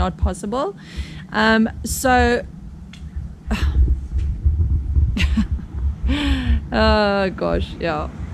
possible. So oh gosh, yeah.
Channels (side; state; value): both; identical; correlation 1.00